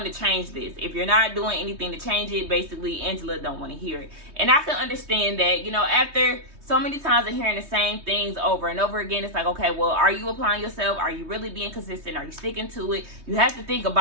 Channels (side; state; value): left; late; 3.2 ms